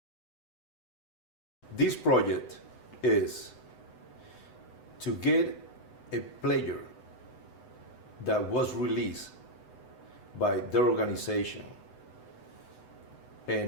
this project is to get a player that was released by their organization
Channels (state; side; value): late; right; 7.9 ms